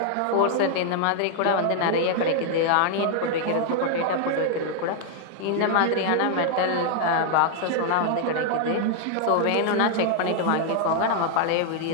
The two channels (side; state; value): both; different; correlation 0.00